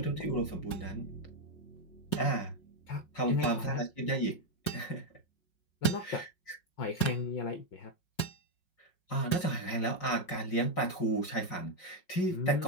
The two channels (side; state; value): right; late; 5.5 ms